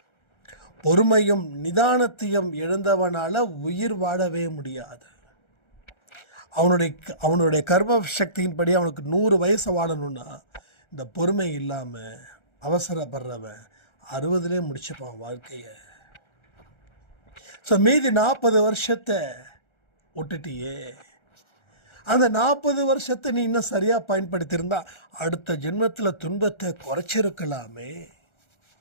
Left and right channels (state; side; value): late; right; 1.4 ms